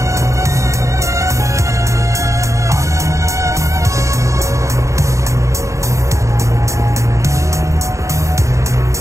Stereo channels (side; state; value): left; late; 0.15 ms